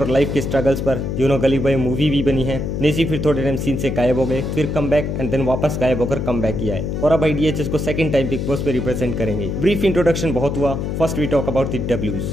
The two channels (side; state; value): left; noise; hum, 2 dB below the sound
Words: और लाइफ के स्ट्रगल्स पर गली बॉय मूवी भी बनी है। नेजी फिर थोड़े टाइम सीन से गायब हो गए, फिर कम बैक एंड देन वापस गायब होकर कम बैक किया है, और अब डीएचएस को सेकंड टाइम बिग बॉस पे रिप्रेजेंट करेंगे। ब्रीफ इंट्रोडक्शन बहुत हुआ, first we talk about the डब्ल्यूज।